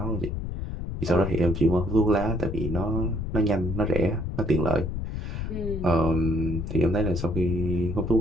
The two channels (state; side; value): noise; left; rumble, 4 dB below the sound